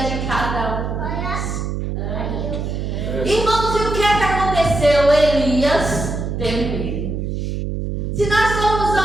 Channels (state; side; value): noise; right; hum, 3 dB below the sound